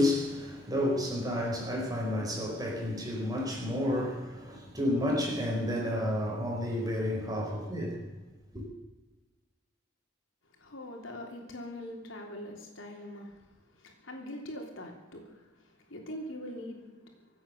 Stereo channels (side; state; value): both; normal; correlation 0.63